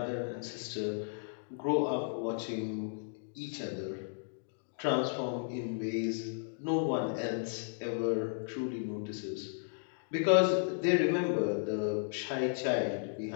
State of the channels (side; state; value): right; silent; digital silence